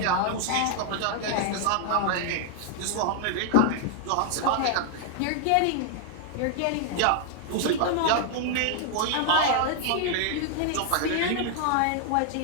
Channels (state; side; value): different; both; correlation 0.00